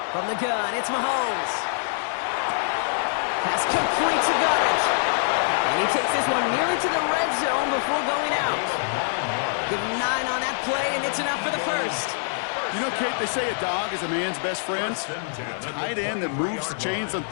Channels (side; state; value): right; silent; digital silence